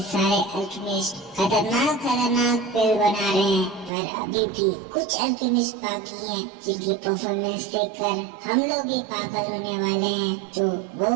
सारे अल्केमिस्ट खतरनाक पिल बना रहे हैं, पर अभी भी कुछ अल्केमिस्ट बाकी हैं जिनकी परफॉर्मेंस देखकर हम लोग भी पागल होने वाले हैं। तो वो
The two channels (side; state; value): left; drops out; at 3.9 s